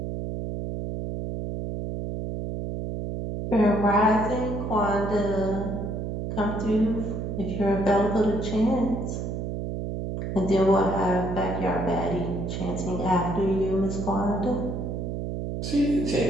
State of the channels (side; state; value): right; noise; hum, 4 dB below the sound